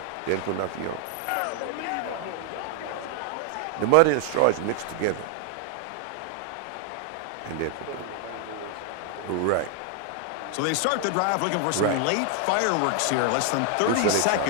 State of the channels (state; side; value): different; both; correlation 0.00